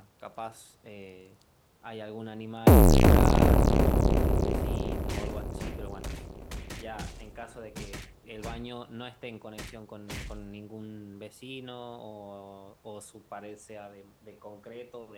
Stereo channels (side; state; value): both; identical; correlation 1.00